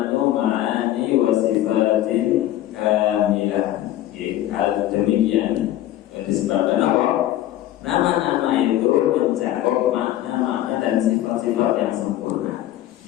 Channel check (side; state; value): right; quieter; 13.6 dB